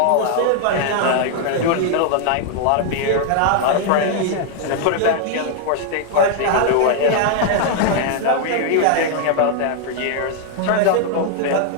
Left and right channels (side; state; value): both; different; correlation 0.00